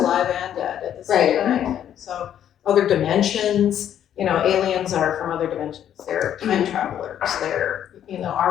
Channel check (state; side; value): quieter; right; 10.2 dB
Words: and dead at the same time. And so other dimensions, you know, aliens are from other dimensions. They're time travelers. They're, you know,